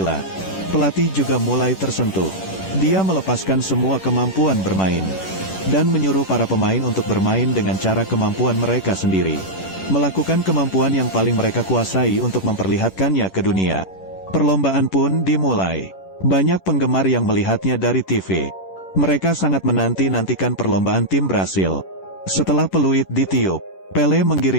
Pelatih juga mulai tersentuh. Dia melepaskan semua kemampuan bermain, dan menyuruh para pemain untuk bermain dengan cara kemampuan mereka sendiri. Melakukan kemampuan yang paling mereka kuasai untuk memperlihatkannya ke dunia. Perlombaan pun dimulai. Banyak penggemar yang melihatnya dari TV. Mereka sangat menanti-nantikan perlombaan tim Brasil. Setelah peluit ditiup, Pele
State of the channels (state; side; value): late; right; 10 ms